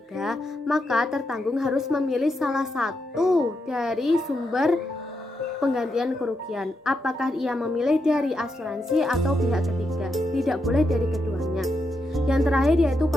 maka tertanggung harus memilih salah satu dari sumber penggantian kerugian. Apakah ia memilih dari asuransi atau pihak ketiga? Tidak boleh dari keduanya. Yang terakhir yaitu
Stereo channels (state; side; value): normal; both; correlation 0.83